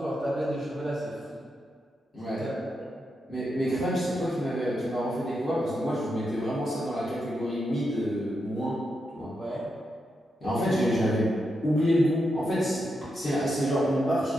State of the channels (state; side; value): normal; both; correlation 0.85